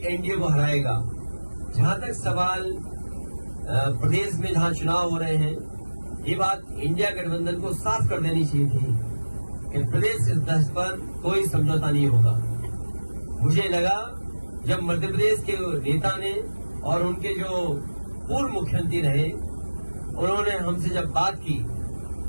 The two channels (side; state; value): both; inverted; correlation -1.00